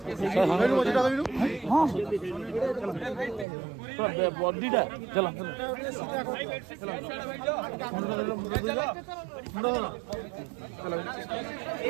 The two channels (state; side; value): drops out; left; at 3.5 s